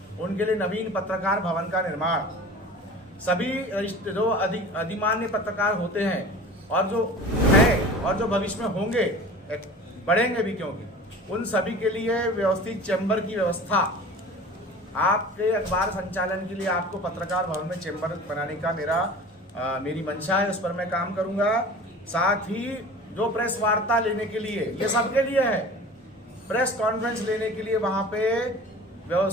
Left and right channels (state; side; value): normal; both; correlation 0.40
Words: उनके लिए नवीन पत्रकार भवन का निर्माण, सभी जो अधिमान्य पत्रकार होते हैं और जो है और जो भविष्य में होंगे, बढ़ेंगे भी क्योंकि, उन सभी के लिए व्यवस्थित चैम्बर की व्यवस्था। आपके अखबार संचालन के लिए आपको पत्रकार भवन में चैम्बर बनाने का मेरी मंशा है, उस पर मैं काम करूंगा। साथ ही जो प्रेस वार्ता लेने के लिए, ये सबके लिए है, प्रेस कॉन्फ्रेंस लेने के लिए वहाँ पे